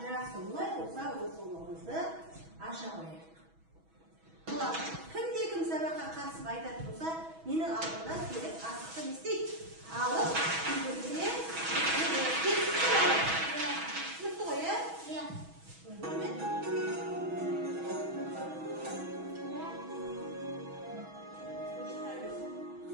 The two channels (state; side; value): late; left; 6.2 ms